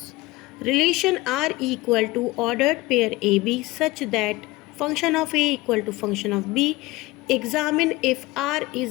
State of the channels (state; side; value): quieter; right; 20.4 dB